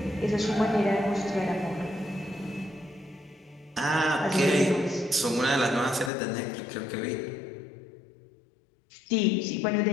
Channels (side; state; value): right; drops out; at 6.1 s